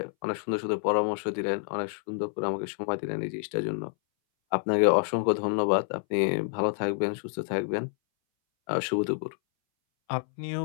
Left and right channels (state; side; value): silent; right; 59 dB below the other